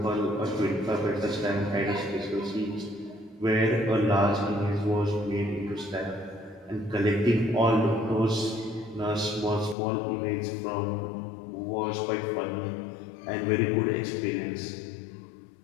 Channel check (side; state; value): right; drops out; at 9.8 s